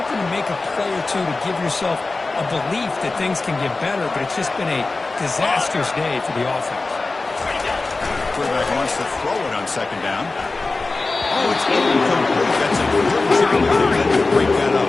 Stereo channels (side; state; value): right; quieter; 3.5 dB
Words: to make a play or two to give yourself a belief that things can get better, but it's just been a disastrous day for the offense. Quarterback wants to throw it on second down. Oh, it's incomplete. That's a good job to break that